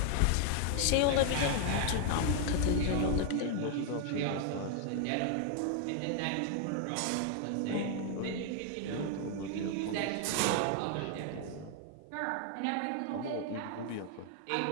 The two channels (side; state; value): both; different; correlation 0.00